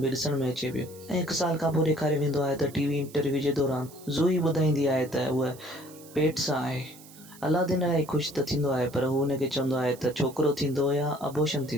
बि ॾिसण में अचे पियो ऐं 1 साल खां पोइ ॾेखारे वेंदो आहे त टीवी इंटरव्यू जे दौरान ज़ोई ॿुधाईंदी आहे त उहा पेट सां आहे। अलादीन इलाही ख़ुशि त थींदो आहे, पर हू हुनखे चवंदो आहे त छोकिरो थींदो या अबॉर्शन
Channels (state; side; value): noise; right; hiss, 21 dB below the sound